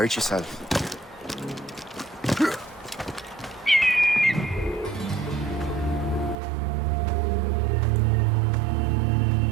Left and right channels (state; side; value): drops out; left; at 6.4 s